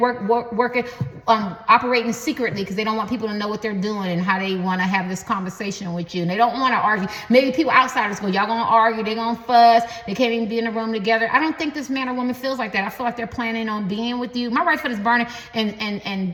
operating secretly, because they don't want people to know what they're doing and how they want to have this conversation with you. And they don't want to argue. Maybe people outsiders go, y'all gonna argue, they're gonna fuss, they can't even be in the room together. I don't think this man or woman feels like that. I feel like they're planning on being with you. My right foot is burning,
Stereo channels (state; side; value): identical; both; correlation 1.00